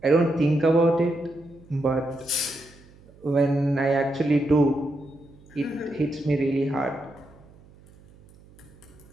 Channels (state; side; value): noise; right; hum, 25 dB below the sound